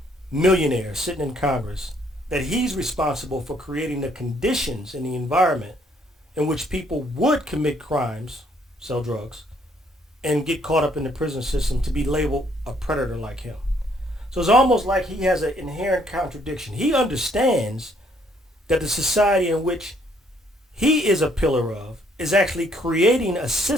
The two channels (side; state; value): both; normal; correlation 0.67